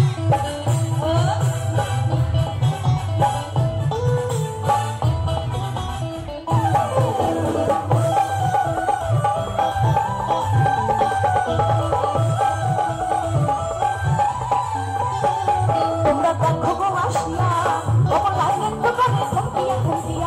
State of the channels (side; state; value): both; identical; correlation 1.00